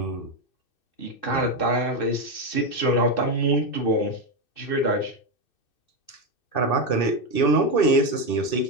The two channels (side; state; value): right; late; 2.6 ms